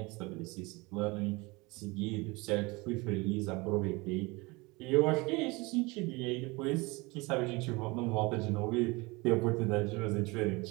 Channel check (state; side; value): quieter; left; 24.9 dB